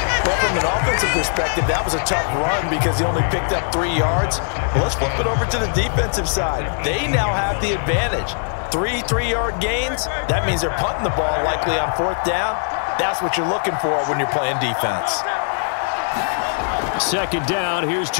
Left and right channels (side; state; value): right; silent; 65 dB below the other